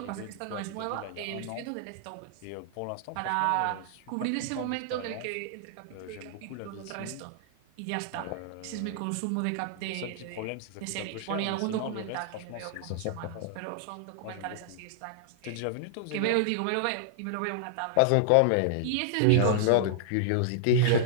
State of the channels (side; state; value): both; different; correlation -0.01